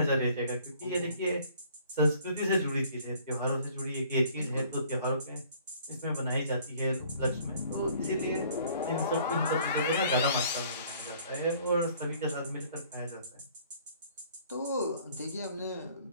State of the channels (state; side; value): inverted; both; correlation -0.56